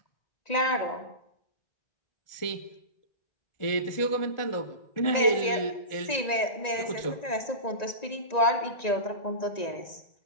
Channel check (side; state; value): right; late; 1.9 ms